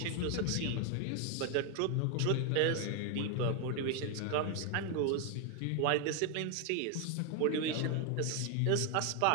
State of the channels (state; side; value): different; both; correlation 0.01